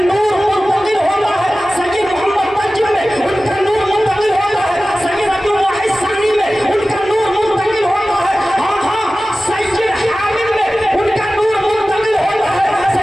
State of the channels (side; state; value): both; normal; correlation 0.96